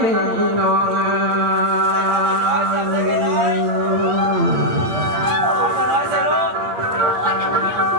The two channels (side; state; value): left; late; 8.5 ms